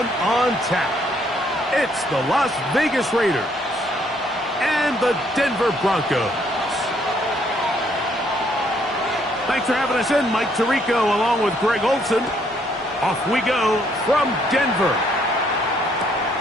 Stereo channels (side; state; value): both; normal; correlation 0.68